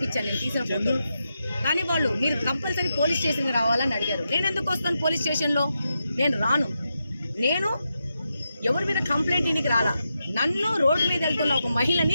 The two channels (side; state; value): both; inverted; correlation -0.87